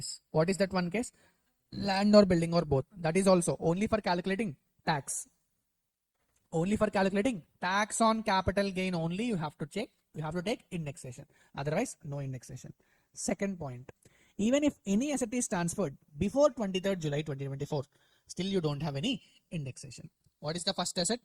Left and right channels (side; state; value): both; identical; correlation 1.00